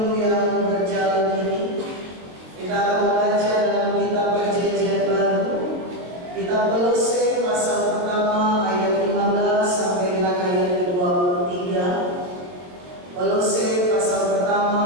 yang berjalan ini, kita akan membaca dalam kitab Perjanjian Baru, kitab Kolose pasal pertama ayat 15 sampai dengan ayat ke-23. Kolose pasal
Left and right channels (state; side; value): late; left; 22 ms